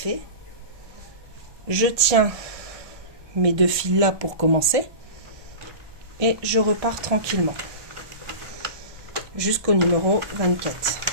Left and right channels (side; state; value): left; late; 1.2 ms